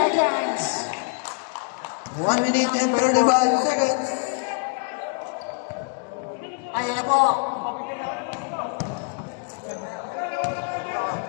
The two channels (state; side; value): quieter; right; 36.2 dB